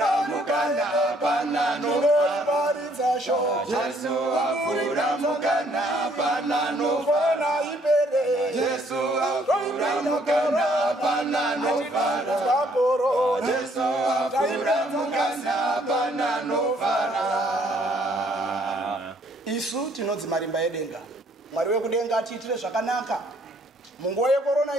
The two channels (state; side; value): normal; both; correlation 0.65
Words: mukana panano varidza sho Jesu afura mukana panano fana ibere Jesu afura mukana panano Kaporo Jesu afura mukana panano isu tinodzi marimba edenga Mwari wekudenga atiitire zvakanaka munguva